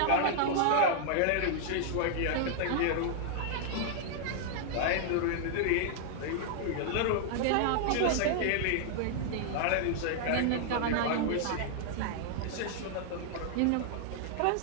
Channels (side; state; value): both; different; correlation -0.01